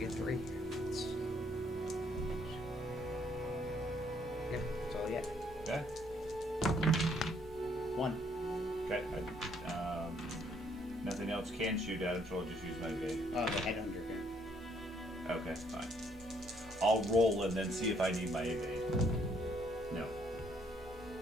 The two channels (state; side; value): noise; right; rumble, 19 dB below the sound